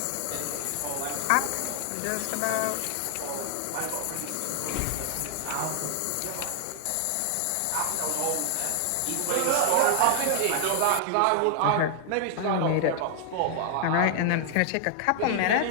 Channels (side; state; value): both; different; correlation 0.00